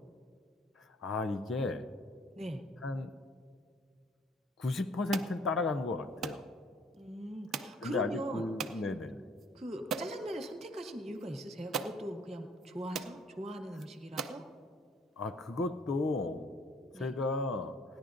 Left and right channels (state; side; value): normal; both; correlation 0.59